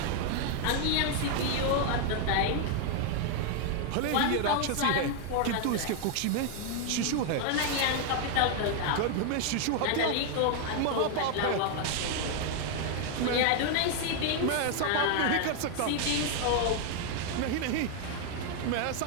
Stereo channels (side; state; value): both; different; correlation 0.00